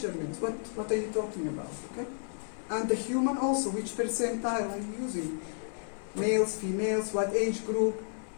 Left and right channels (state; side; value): silent; right; digital silence